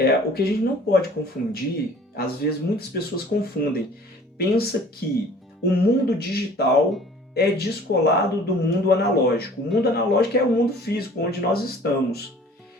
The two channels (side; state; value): both; normal; correlation 0.50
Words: O que a gente não pode confundir, às vezes muitas pessoas confundem. Pensa que o mundo digital é descolado do mundo analógico. O mundo analógico é o mundo físico, onde nós estamos.